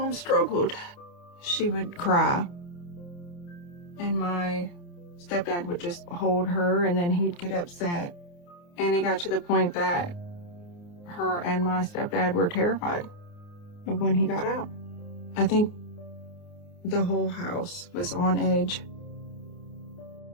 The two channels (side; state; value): right; late; 29 ms